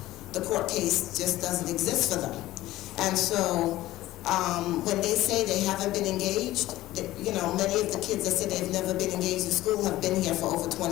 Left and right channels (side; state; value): right; quieter; 16.1 dB